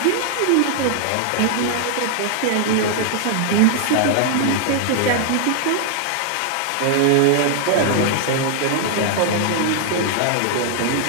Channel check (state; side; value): different; both; correlation 0.00